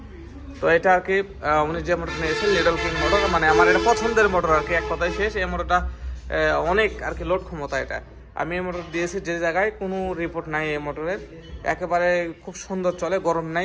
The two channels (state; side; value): identical; both; correlation 1.00